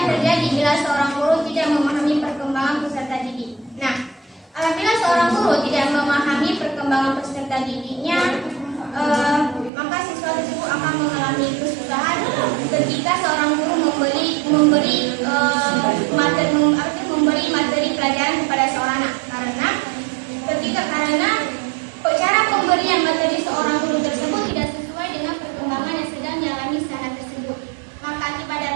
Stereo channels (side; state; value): left; drops out; at 9.7 s